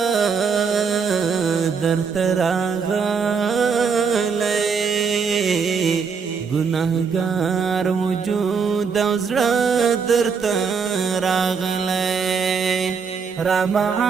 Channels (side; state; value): left; quieter; 5.8 dB